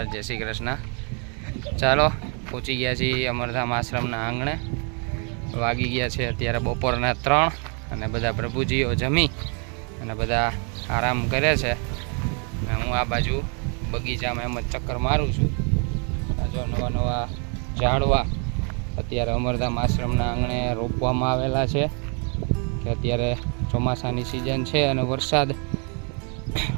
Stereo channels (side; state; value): left; quieter; 37.5 dB